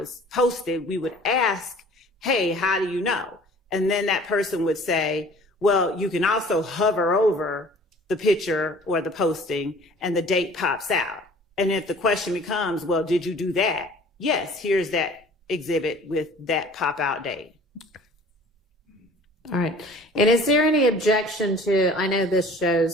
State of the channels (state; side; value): normal; both; correlation 0.48